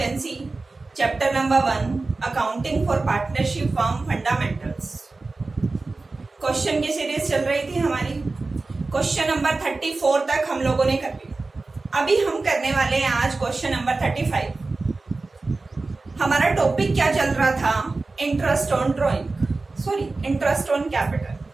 Chapter number 1, Accounting for Partnership Firm Fundamentals. Question की series चल रही थी हमारी। Question number 34 तक हम लोगों ने कर लिया। अभी हम करने वाले हैं आज क्वेश्चन नंबर 35। हमारा टॉपिक क्या चल रहा था? Interest on interest on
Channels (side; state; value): left; quieter; 3.6 dB